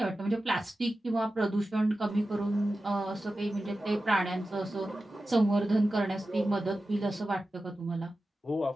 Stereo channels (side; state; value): both; normal; correlation 0.93